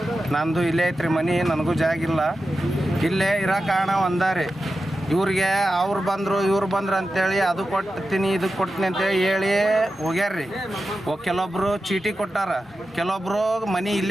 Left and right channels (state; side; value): normal; both; correlation 0.92